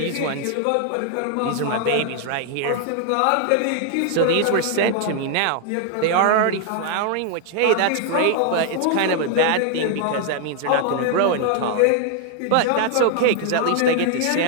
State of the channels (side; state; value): both; different; correlation 0.00